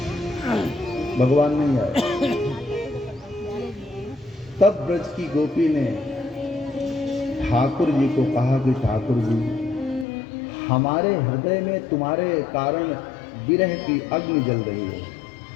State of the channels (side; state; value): right; drops out; at 10.1 s